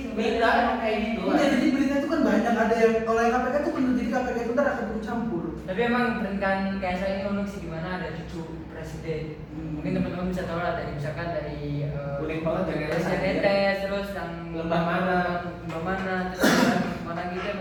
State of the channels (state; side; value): identical; both; correlation 1.00